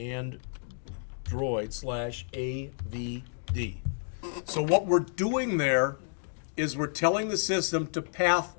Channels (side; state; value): right; silent; digital silence